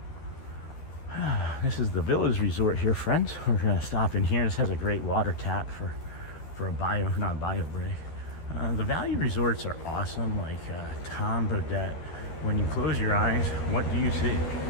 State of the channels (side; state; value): right; late; 12 ms